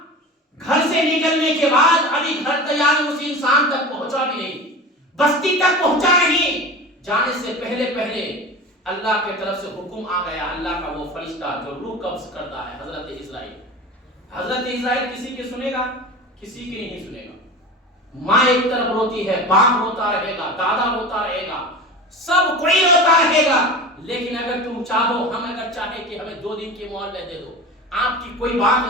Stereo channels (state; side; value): normal; both; correlation 0.32